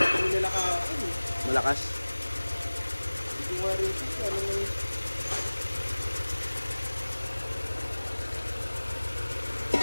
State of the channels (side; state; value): both; inverted; correlation -1.00